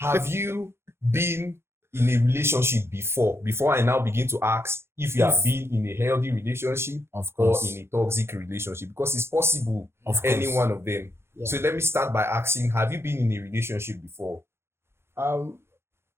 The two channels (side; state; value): left; late; 0.12 ms